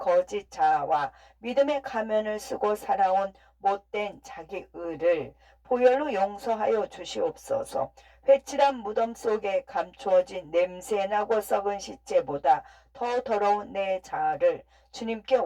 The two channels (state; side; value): identical; both; correlation 1.00